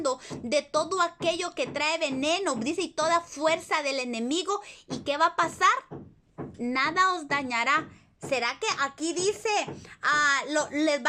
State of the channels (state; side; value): identical; both; correlation 1.00